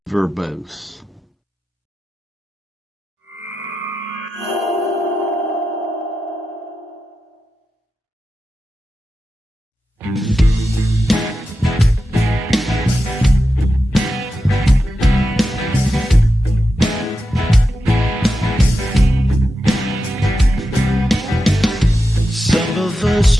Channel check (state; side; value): normal; both; correlation 0.90